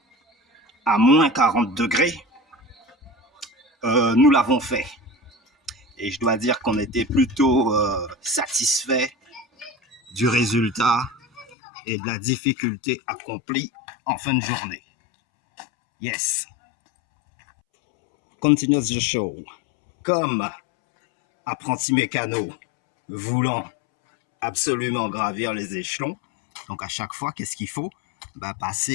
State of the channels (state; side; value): drops out; right; at 11.6 s